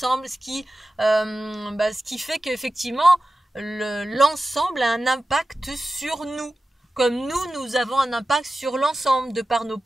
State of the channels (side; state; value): both; normal; correlation 0.94